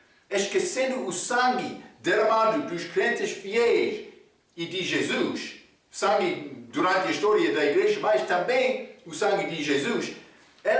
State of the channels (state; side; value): identical; both; correlation 1.00